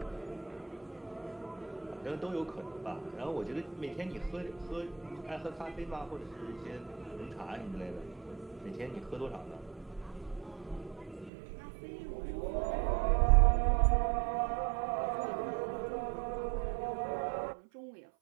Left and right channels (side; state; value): left; drops out; at 11.3 s